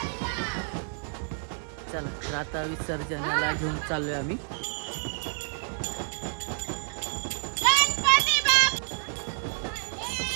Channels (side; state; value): left; silent; 59 dB below the other